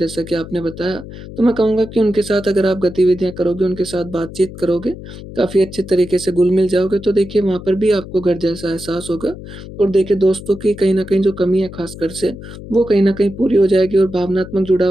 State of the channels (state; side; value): noise; left; hum, 13 dB below the sound